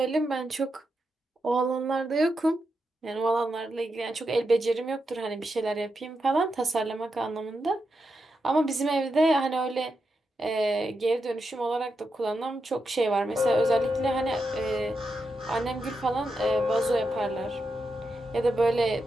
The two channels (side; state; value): both; normal; correlation 0.86